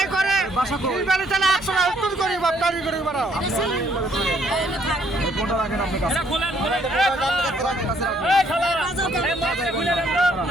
করে চলে 100 টাকা করি বাপটারি করে বেড়াও।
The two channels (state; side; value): normal; both; correlation 0.66